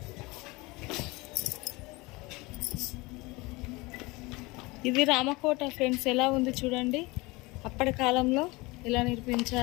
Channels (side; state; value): right; quieter; 23.7 dB